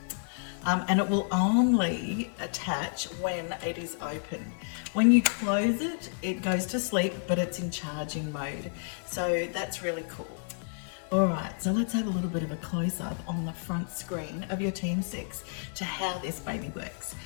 and it will only attach when it is open. When you close it, it goes to sleep, but it's in charging mode. So that's really cool. All right, so let's have a little bit of a close-up on the front screen of your TM6 to how this baby works.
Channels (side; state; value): right; silent; digital silence